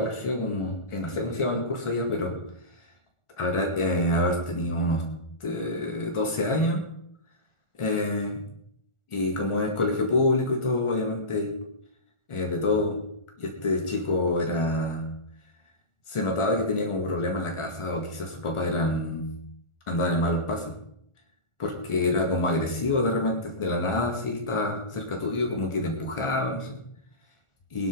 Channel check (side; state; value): right; late; 1.4 ms